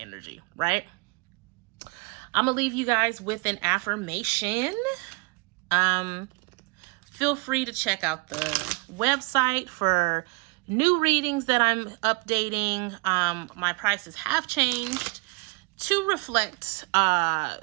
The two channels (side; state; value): left; quieter; 28.8 dB